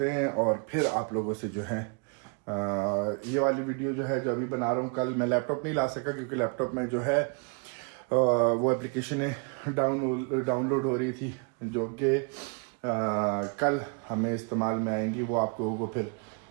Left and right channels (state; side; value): quieter; left; 36.2 dB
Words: हैं। और फिर आप लोगों से जो है ये वाली वीडियो जो है जो अभी बना रहा हूँ, कल मैं लैपटॉप नहीं ला सका क्योंकि लैपटॉप में जो है वो एप्लीकेशनें डाउनलोड हो रही थी जो कि कल हमें इस्तेमाल में आएंगी। वो आप लोगों को फिर